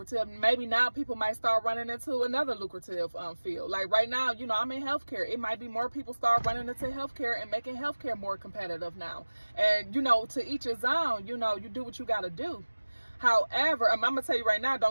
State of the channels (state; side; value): inverted; both; correlation -1.00